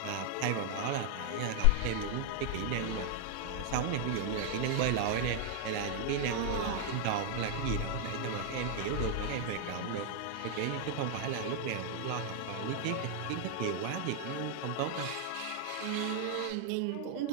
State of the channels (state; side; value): different; both; correlation 0.00